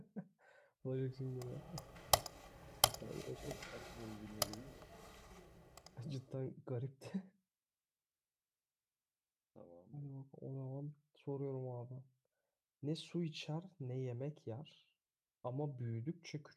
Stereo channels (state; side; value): identical; both; correlation 1.00